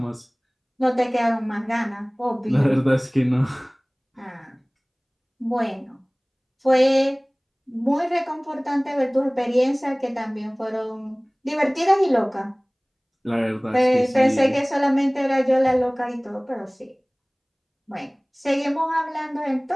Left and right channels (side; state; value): both; identical; correlation 1.00